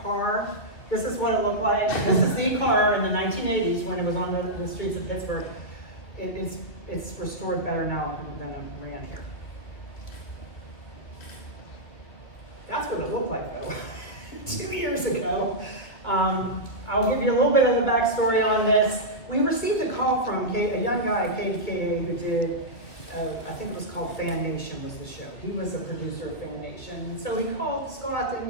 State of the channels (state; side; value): late; right; 2.5 ms